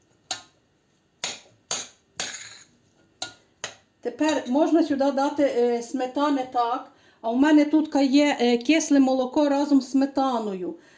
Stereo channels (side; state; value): both; identical; correlation 1.00